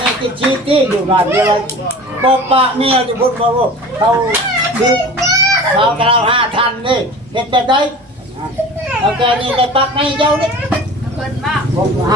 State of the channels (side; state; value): both; normal; correlation 0.39